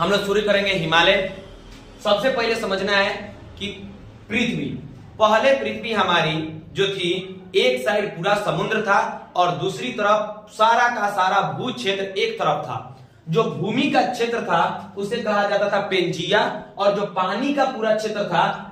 लोग शुरू करेंगे हिमालय। सबसे पहले समझना है कि पृथ्वी हमारी जो थी, एक साइड पूरा समुद्र था और दूसरी तरफ सारा का सारा भू क्षेत्र एक तरफ था। जो भूमि का क्षेत्र था उसे कहा जाता था पेंजिया और जो पानी का पूरा क्षेत्र था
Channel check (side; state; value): both; identical; correlation 1.00